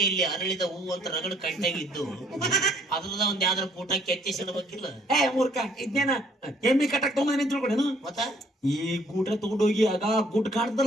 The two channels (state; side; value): normal; both; correlation 0.62